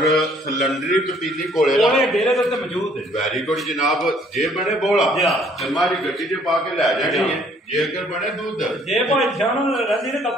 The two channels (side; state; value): both; normal; correlation 0.62